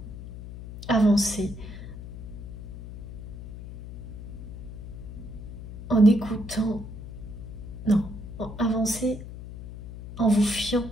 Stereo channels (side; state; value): left; noise; hum, 11 dB below the sound